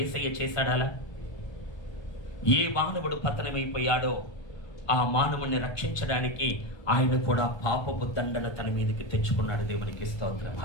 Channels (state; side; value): late; right; 1.3 ms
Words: చేశాడాలా? ఏ మానవుడు పతనమైపోయాడో ఆ మానవుని రక్షించడానికి ఆయన కూడా పాపపు దండన తన మీదకి తెచ్చుకున్నాడు. దేవునికి స్తోత్రం.